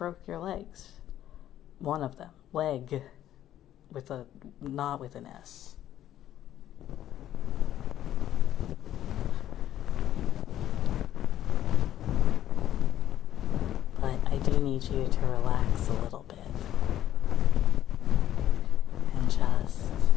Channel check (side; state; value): right; quieter; 12.0 dB